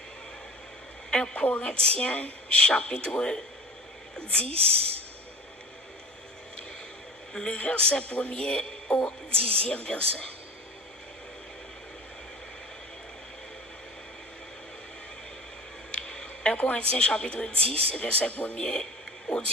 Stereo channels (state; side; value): normal; both; correlation 0.37